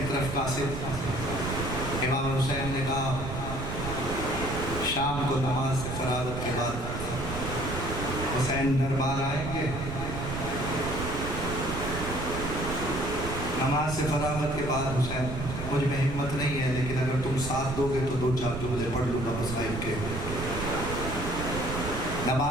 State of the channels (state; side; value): noise; right; rumble, 6 dB below the sound